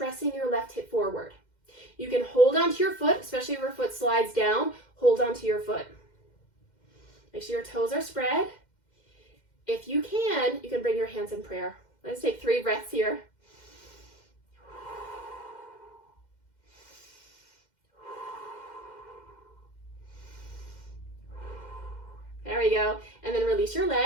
your left hip forward. You can hold onto your foot, especially if your foot slides down, hold onto your foot. Make sure your toes are spread. If you can bring your hands in prayer. Let's take 3 breaths here. There we go. And then release your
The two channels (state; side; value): late; right; 2.1 ms